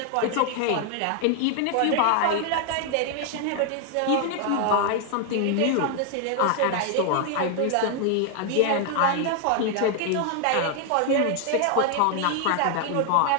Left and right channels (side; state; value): both; different; correlation 0.00